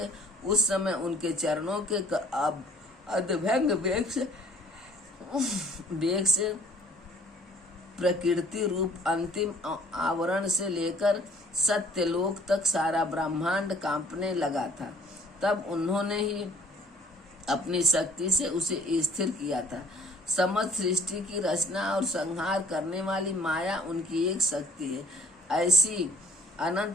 उस समय उनके चरणों के अभंग वेग से प्रकृति रूप अंतिम आवरण से लेकर सत्यलोक तक सारा ब्रह्मांड कांपने लगा था। तब उन्होंने ही अपनी शक्ति से उसे स्थिर किया था। समस्त सृष्टि की रचना और संहार करने वाली माया उनकी एक शक्ति है। ऐसी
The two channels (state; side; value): normal; both; correlation 0.56